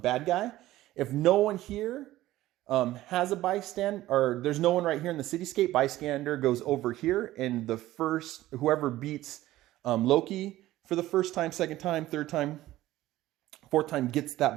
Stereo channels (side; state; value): left; quieter; 15.6 dB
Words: guy. If no one here has a bystander, or there's no one right here in the cityscape, bystander goes over here, and the first, whoever beats Loki for the first time, second time, third time, fourth time gets that